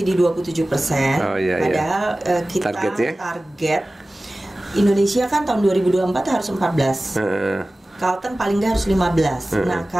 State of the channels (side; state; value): both; normal; correlation 0.97